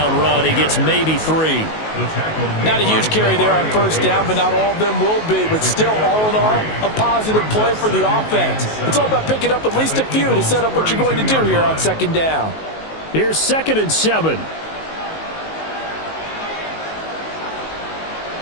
run. He gets maybe 3. Not a huge carry there on first down, but not all of them will be. But still, all in all, a positive play for the offense. It's all about picking up at least a few to set up what you're going to do here on second down. Here's 2nd and 7.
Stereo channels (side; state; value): right; late; 19 ms